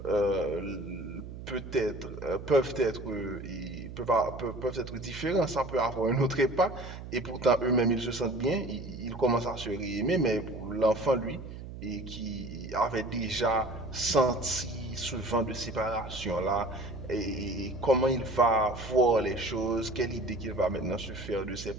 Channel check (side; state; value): right; noise; hum, 11 dB below the sound